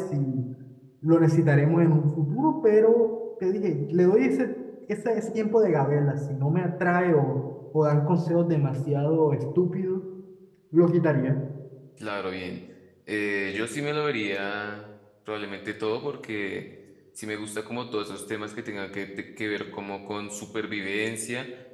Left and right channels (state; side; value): identical; both; correlation 1.00